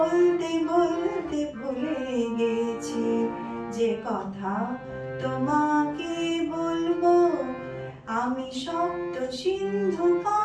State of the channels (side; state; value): both; identical; correlation 1.00